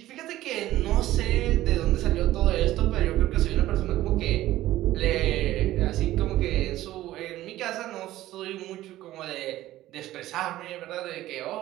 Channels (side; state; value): left; quieter; 15.1 dB